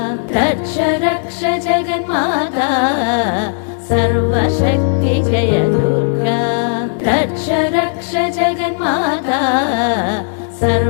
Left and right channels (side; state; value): right; silent; digital silence